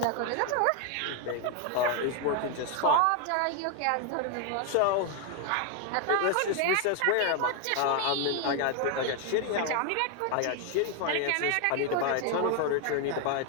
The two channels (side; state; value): both; different; correlation 0.01